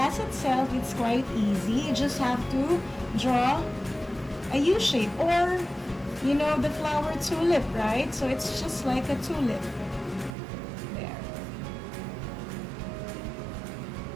itself, it's quite easy. You just have to draw a U shape, or you know the flower tulip, right? So it's just like a tulip. There.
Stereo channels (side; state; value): left; drops out; at 10.4 s